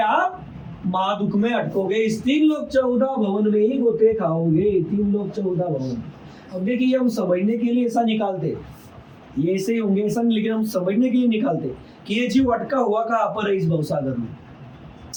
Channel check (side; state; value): both; identical; correlation 1.00